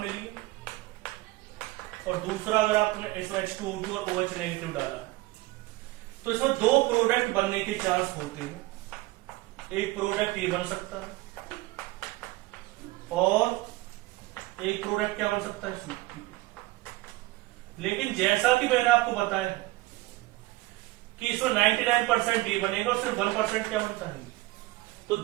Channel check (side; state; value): left; quieter; 19.7 dB